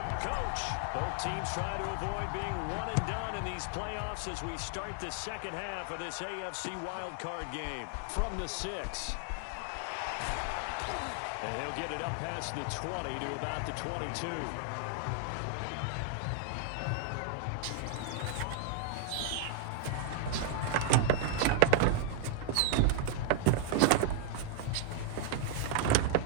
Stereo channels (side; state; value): both; different; correlation 0.00